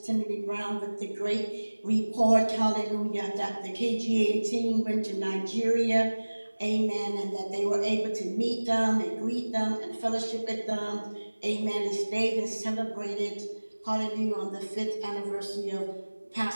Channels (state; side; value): inverted; both; correlation -1.00